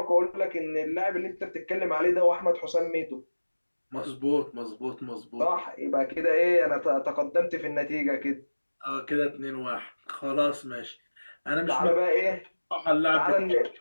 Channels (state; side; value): inverted; both; correlation -1.00